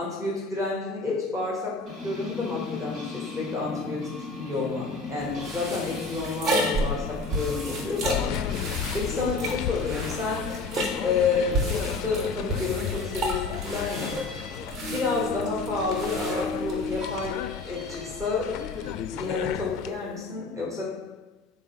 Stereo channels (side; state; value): right; quieter; 3.4 dB